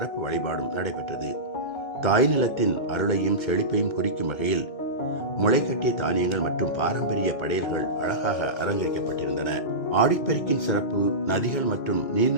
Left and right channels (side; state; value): right; late; 2.2 ms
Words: வழிபாடும் நடைபெற்றது. தாய் நிலத்தின் அருளையும் செழிப்பையும் குறிக்கும் வகையில் முளைக்கட்டிய தானியங்கள் மற்றும் பாரம்பரிய படையல்கள் அழகாக அலங்கரிக்கப்பட்டிருந்தன. ஆடிப்பெருக்கின் சிறப்பு, நதிகள் மற்றும்